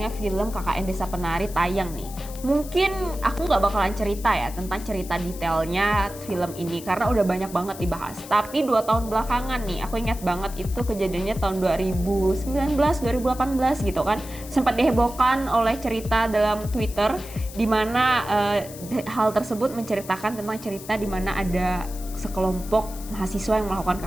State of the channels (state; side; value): noise; left; hiss, 15 dB below the sound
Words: film KKN Desa Penari tayang nih. Mungkin aku nggak bakalan cerita ya tentang cerita detailnya film ini karena udah banyak banget dibahas. Tapi 2 tahun belakangan nih, aku ingat banget itu kejadiannya tahun 2019, 2018 gitu kan. Sempat dihebohkan oleh cerita dalam Twitter di mana hal tersebut menceritakan tentang cerita di mana ada sekelompok mahasiswa yang melakukan